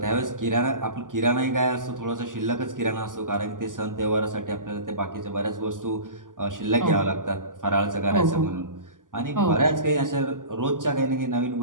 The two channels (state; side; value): late; left; 0.88 ms